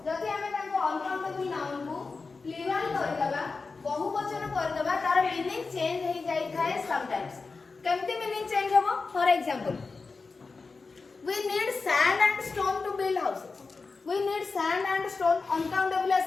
जदि हमें ताको uncountable noun को plural कर दबा बहुवचन कर दबा तार मीनिंग चेंज हो जाई थाए समटाइम्स केमती मीनिंग चेंज होबो for example we need sand and stone to build houses we need sand and stone uncountable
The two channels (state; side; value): quieter; right; 4.2 dB